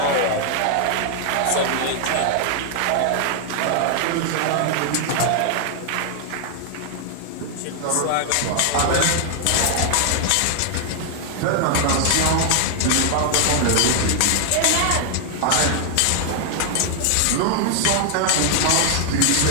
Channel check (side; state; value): both; different; correlation 0.00